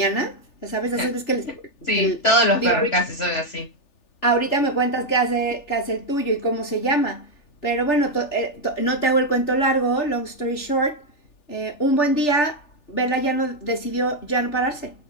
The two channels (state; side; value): late; right; 3.4 ms